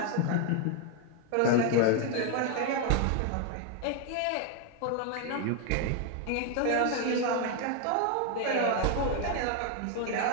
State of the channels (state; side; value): different; both; correlation 0.01